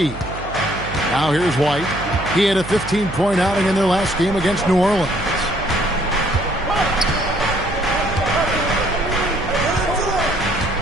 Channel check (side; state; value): right; noise; hum, 12 dB below the sound